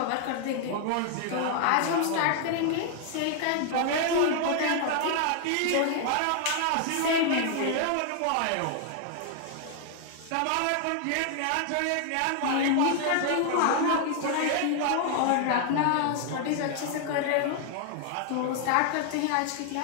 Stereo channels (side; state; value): both; different; correlation 0.00